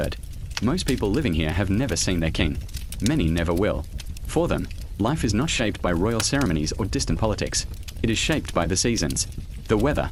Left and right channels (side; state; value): both; identical; correlation 1.00